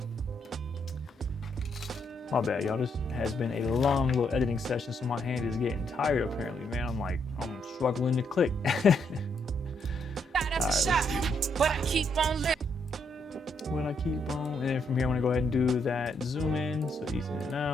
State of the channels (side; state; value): both; normal; correlation 0.76